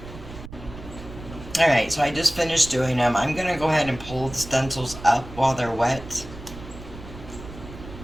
Alright, so I just finished doing them. I'm going to go ahead and pull the stencils up while they're wet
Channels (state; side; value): noise; right; rumble, 14 dB below the sound